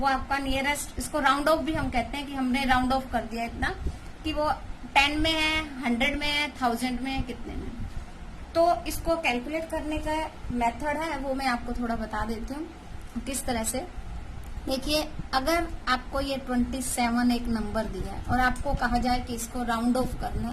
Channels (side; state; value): both; identical; correlation 1.00